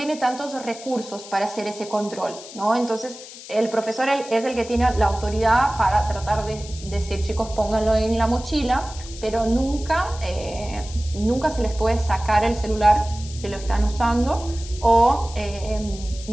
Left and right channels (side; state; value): left; noise; hiss, 15 dB below the sound